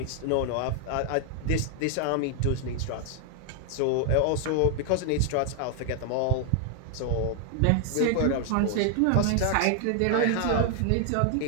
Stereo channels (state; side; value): different; both; correlation 0.00